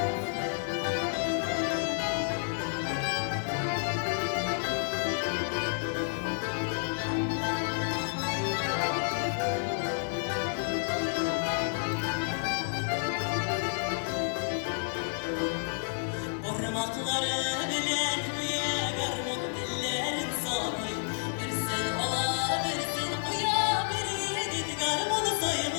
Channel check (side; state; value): right; silent; 57 dB below the other